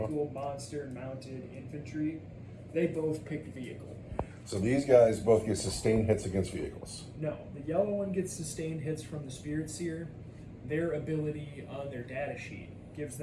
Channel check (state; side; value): identical; both; correlation 1.00